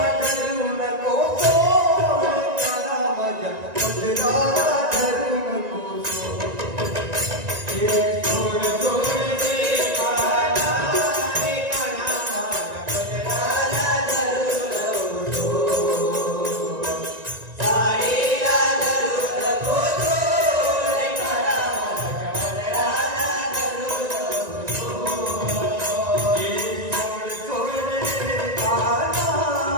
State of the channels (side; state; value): left; late; 1.9 ms